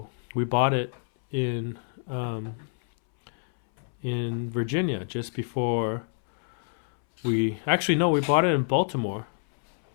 we bought it in Virginia just before we bought it in Baltimore,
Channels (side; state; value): right; silent; 60 dB below the other